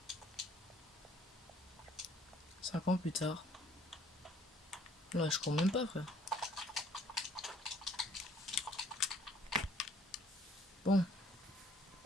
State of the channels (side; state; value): both; normal; correlation 0.59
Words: 5 ans plus tard. Là, je cours même pas, frère. Bon.